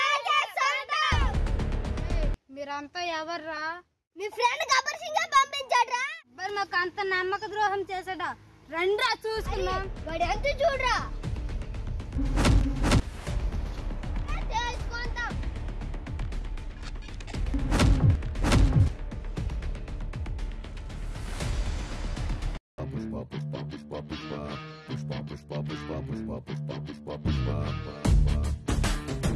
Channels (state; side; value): identical; both; correlation 1.00